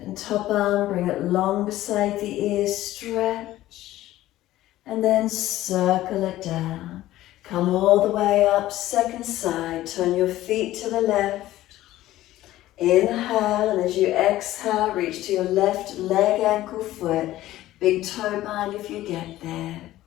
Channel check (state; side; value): quieter; right; 15.1 dB